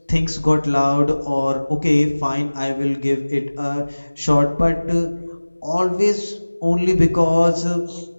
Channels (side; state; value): both; inverted; correlation -1.00